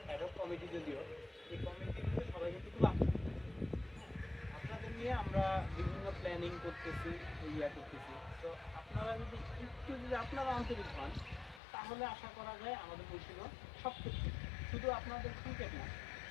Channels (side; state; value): right; drops out; at 11.6 s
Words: অ্যাডহক কমিটি, যদিও এই কমিটি কিন্তু সবাই কিন্তু খুব আন্তরিক। আপনাদের নিয়ে আমরা বিভিন্ন প্ল্যানিং করতেছি, করতেছি। তো আপনারা যদি আপনারা আন্তরিক হন, তাহলে আশা করা যায় আমাদের মুন্সিগঞ্জ সব ক্ষেত্রে, শুধু আপনাদের ক্রিকেট না,